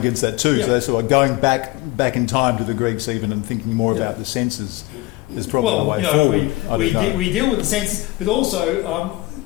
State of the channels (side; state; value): right; quieter; 20.2 dB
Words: that too. So that's sort of going back in time to the Greeks even and thinking more about the senses is probably the way forward. we deal with the senses, but also